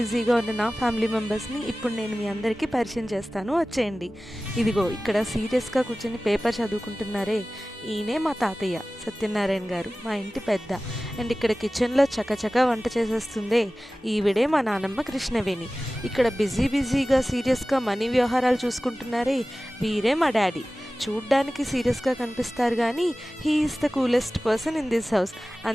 ఉన్న నా ఫ్యామిలీ మెంబర్స్ని ఇప్పుడు నేను మీ అందరికీ పరిచయం చేస్తాను, వచ్చేయండి. ఇదిగో ఇక్కడ సీరియస్గా కూర్చొని పేపర్ చదువుకుంటున్నారే, ఈయనే మా తాతయ్య సత్యనారాయణ గారు, మా ఇంటి పెద్ద. అండ్ ఇక్కడ కిచెన్లో చకచకా వంట చేసేస్తుందే, ఈవిడే మా నానమ్మ కృష్ణవేణి. ఇక్కడ బిజీగా సీరియస్గా మనీ వ్యవహారాలు చూసుకుంటున్నారే, వీరే మా డాడీ. చూడ్డానికి సీరియస్గా కనిపిస్తారు కానీ he is the coolest person in this house.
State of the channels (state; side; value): normal; both; correlation 0.97